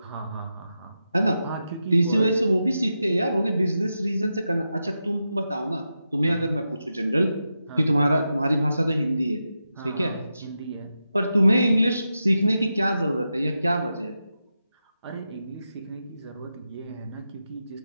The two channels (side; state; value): both; inverted; correlation -0.89